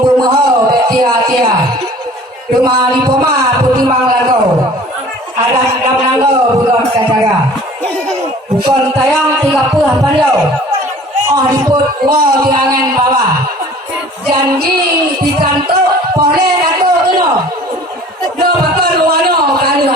Bumoho Tia-Tia, Rumah Dipoma Putimang Langkau, Adat Dam Langkau Bulon Kacara, Bukan tayang 30 Panjau, Diput Wow di angan bawah, janji dikantuk boleh kantuk kena, do bakal wano kali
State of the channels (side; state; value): both; normal; correlation 0.48